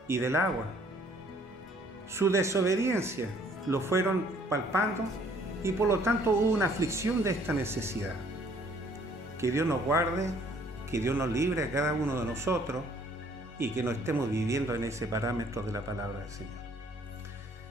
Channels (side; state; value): both; normal; correlation 0.60